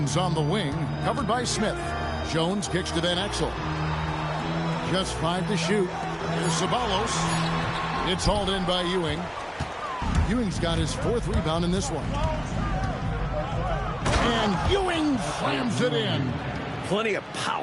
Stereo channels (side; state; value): both; identical; correlation 1.00